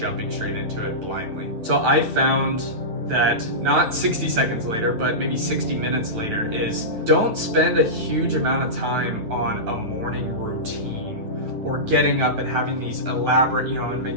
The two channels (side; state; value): left; late; 9.2 ms